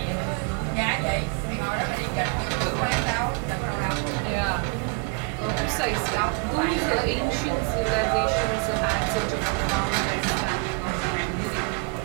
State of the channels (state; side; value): quieter; left; 31.0 dB